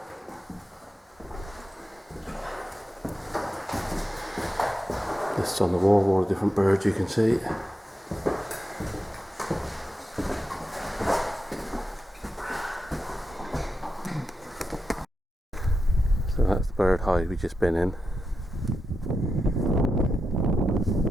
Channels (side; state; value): both; normal; correlation 0.88